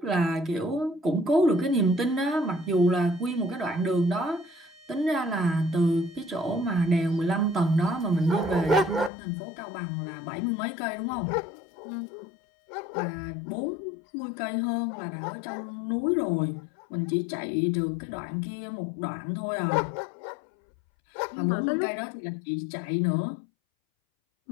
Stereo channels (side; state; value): right; drops out; at 9.1 s